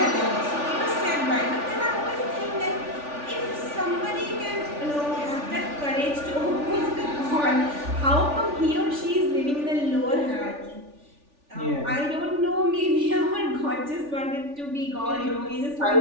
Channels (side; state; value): left; late; 3.4 ms